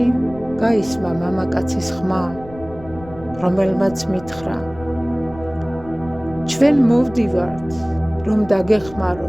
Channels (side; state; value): left; noise; rumble, 18 dB below the sound